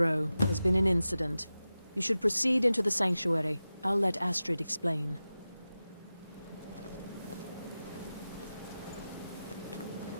There's been an incident. You should proceed into the sanctuary. I'll let Astrid explain.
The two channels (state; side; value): inverted; both; correlation -0.94